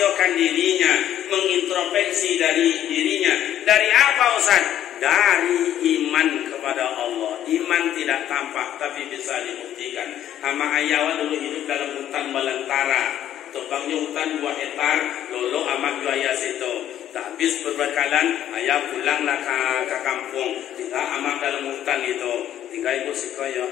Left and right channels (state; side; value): quieter; right; 11.3 dB